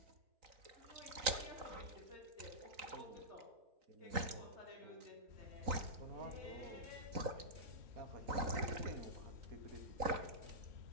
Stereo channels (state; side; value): late; left; 3.9 ms